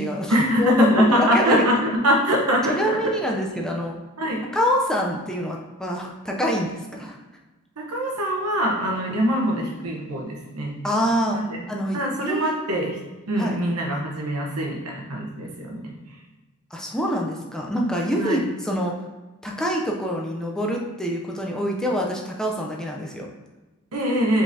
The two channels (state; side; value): normal; both; correlation 0.46